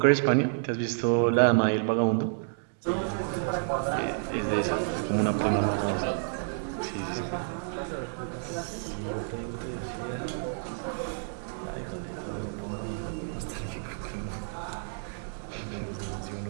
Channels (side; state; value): left; silent; digital silence